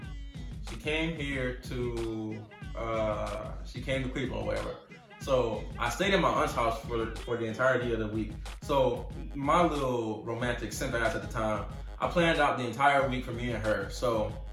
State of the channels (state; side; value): identical; both; correlation 1.00